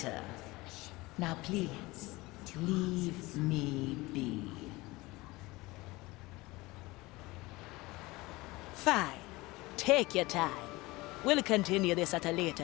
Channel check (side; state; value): right; quieter; 21.4 dB